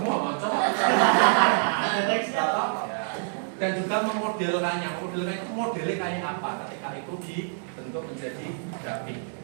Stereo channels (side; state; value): left; silent; digital silence